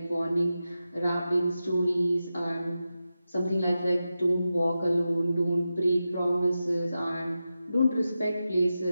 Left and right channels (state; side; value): inverted; both; correlation -0.91